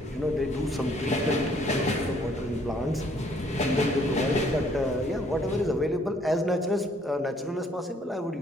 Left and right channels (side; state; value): both; normal; correlation 0.63